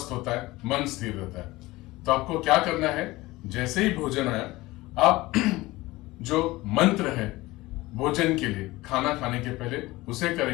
होता है, मन स्थिर रहता है। तो आपको क्या करना है, जैसे ही भोजन आया आप जो मंत्र है भोजन के लिए, खाना खाने के पहले उसे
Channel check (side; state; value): right; quieter; 19.7 dB